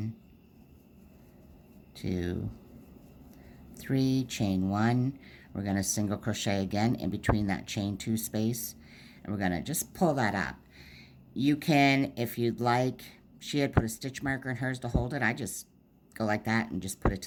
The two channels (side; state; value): both; identical; correlation 1.00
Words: 2, 3, chain 1. We're going to single crochet again in between that chain 2 space, and we're going to just pull that up. You can, if you'd like, she had put a stitch marker in hers to hold it. I just go like that and just put it